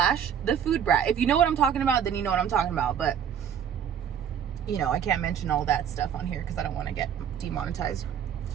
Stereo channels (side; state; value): left; quieter; 8.5 dB